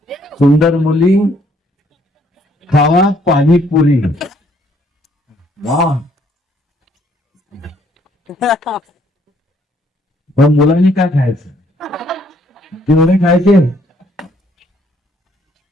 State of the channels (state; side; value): normal; both; correlation 0.66